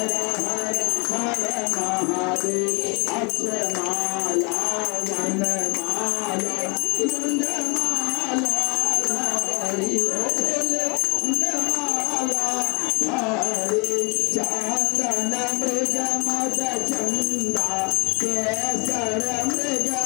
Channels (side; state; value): right; quieter; 31.4 dB